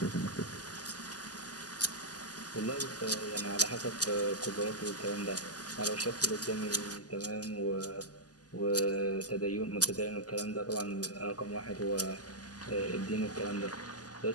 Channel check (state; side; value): late; right; 0.68 ms